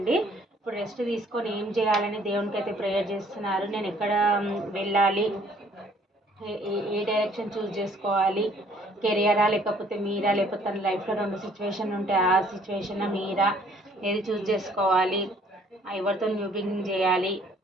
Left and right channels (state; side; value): normal; both; correlation 0.60